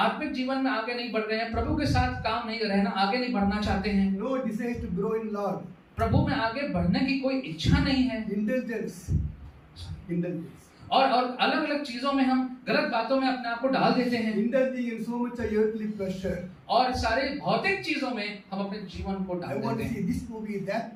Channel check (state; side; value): identical; both; correlation 1.00